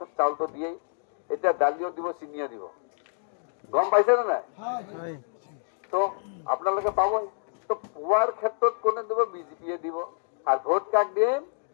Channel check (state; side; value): silent; right; digital silence